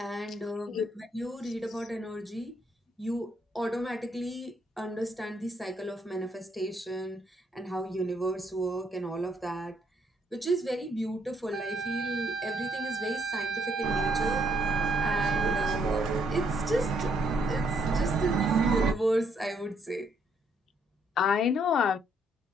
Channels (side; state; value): both; normal; correlation 0.71